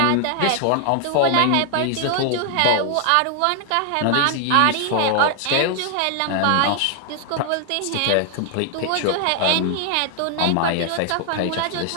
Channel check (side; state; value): both; different; correlation 0.00